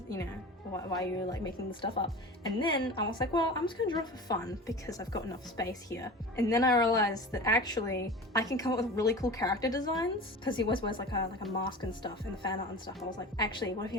you know, why are you like making the stuff up? And then I was like, well, I'm just gonna draw for fun because I've got enough space here. And then I realized that actually I can come up with really cool character designs, because he always wears like a mask and stuff in the fan art and stuff. I was like, actually, what if he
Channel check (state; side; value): normal; both; correlation 0.34